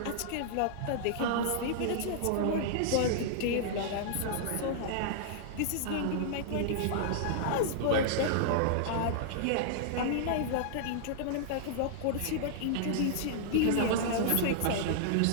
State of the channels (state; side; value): different; both; correlation -0.01